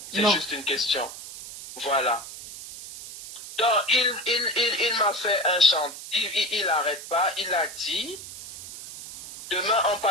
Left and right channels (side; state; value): right; noise; hiss, 13 dB below the sound